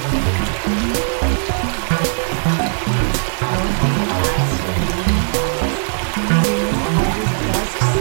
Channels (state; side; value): silent; left; 67 dB below the other